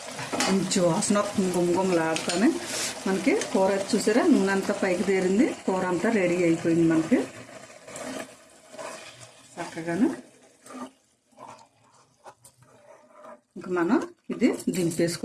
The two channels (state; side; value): identical; both; correlation 1.00